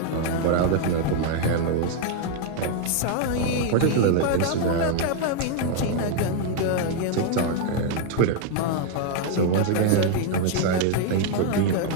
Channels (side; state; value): both; different; correlation 0.01